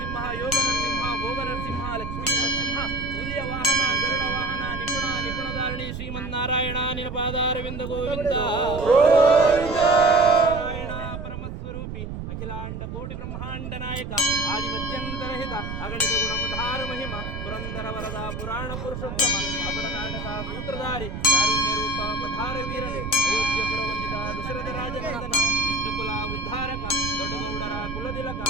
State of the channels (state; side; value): noise; right; rumble, 7 dB below the sound